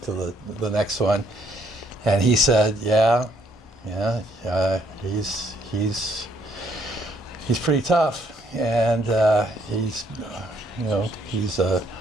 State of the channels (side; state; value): both; normal; correlation 0.69